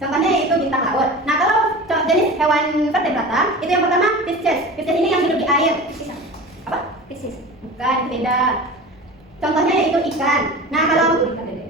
Contohnya yaitu bintang laut. Nah, kalau jenis hewan vertebrata itu yang pertama Pisces. Pisces ini yang hidup di air. Apa? Piscis, Bukan, itu beda. Contohnya yaitu ikan. Nah, kalau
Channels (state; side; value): normal; both; correlation 0.34